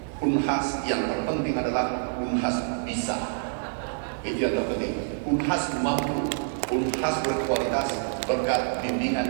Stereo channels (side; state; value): left; silent; digital silence